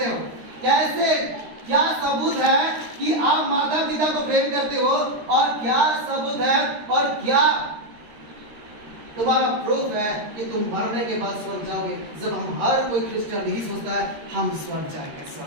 हो? कैसे? क्या सबूत है कि आप माता पिता को प्रेम करते हो? और क्या सबूत है और क्या तुम्हारा प्रूफ है कि तुम मरने के बाद स्वर्ग जाओगे? जब हम हर कोई क्रिश्चियन यही सोचता है हम स्वर्ग जाएंगे,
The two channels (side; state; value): left; late; 13 ms